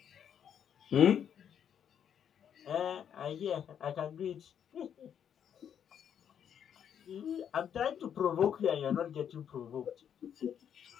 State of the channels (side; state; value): right; quieter; 8.7 dB